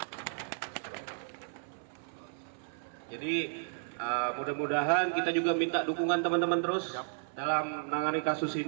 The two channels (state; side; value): silent; left; 56 dB below the other